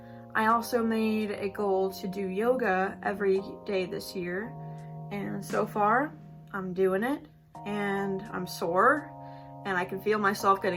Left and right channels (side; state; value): both; identical; correlation 1.00